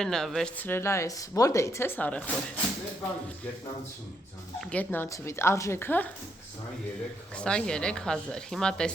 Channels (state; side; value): normal; both; correlation 0.76